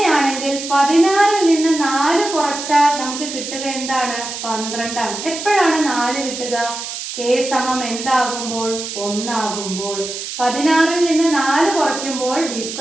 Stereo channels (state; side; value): noise; right; hiss, 7 dB below the sound